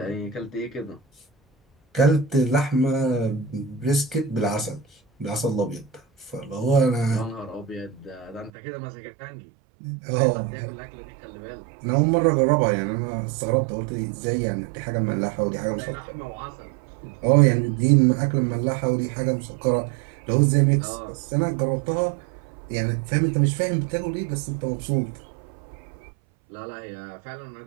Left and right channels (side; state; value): left; drops out; at 8.5 s